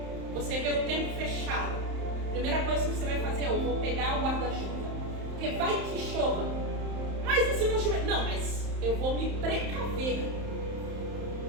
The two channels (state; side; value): late; left; 31 ms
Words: você vê o tempo fechado, a primeira coisa que você vai fazer é: eu vou pegar o guarda-chuva, porque vai que chova. Mas e se não chover? Não, mas eu vou me precaver,